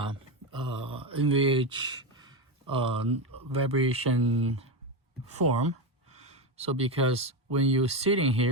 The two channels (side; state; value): both; normal; correlation 0.13